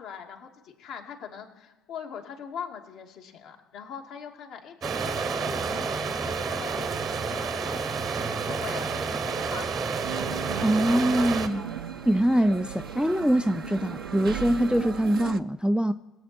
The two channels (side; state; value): both; normal; correlation 0.87